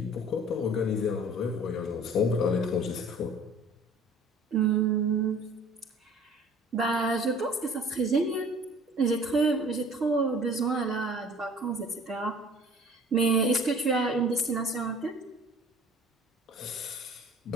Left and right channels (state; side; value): normal; both; correlation 0.49